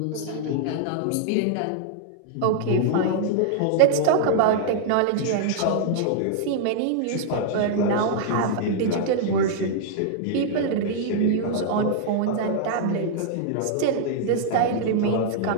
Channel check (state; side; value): different; both; correlation -0.01